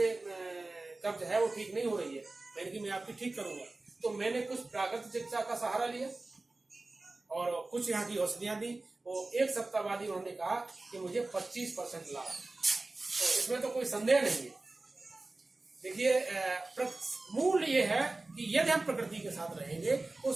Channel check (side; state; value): left; quieter; 3.2 dB